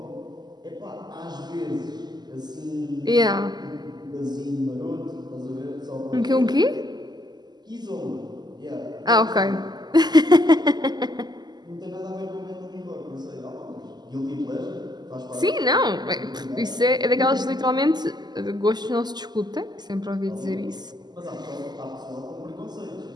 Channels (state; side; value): late; left; 0.20 ms